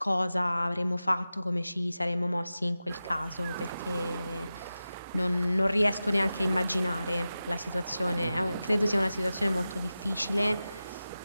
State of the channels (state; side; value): inverted; both; correlation -0.94